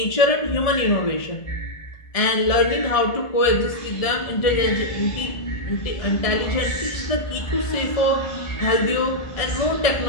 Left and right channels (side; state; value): right; late; 1.6 ms